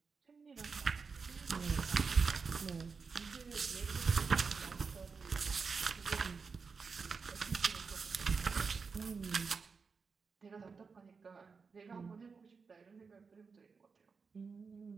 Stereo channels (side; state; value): left; quieter; 5.1 dB